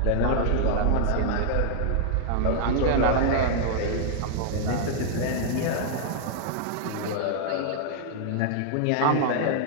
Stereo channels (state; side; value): different; both; correlation -0.01